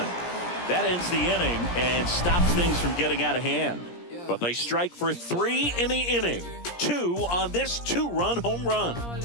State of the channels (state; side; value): late; right; 17 ms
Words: That ends the inning and stops things from getting out of hand. But they strike for 3 in the inning. 2 on this 2-run home run.